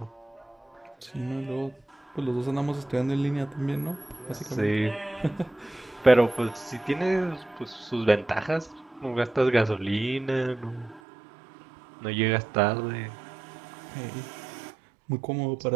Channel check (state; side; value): drops out; left; at 11.0 s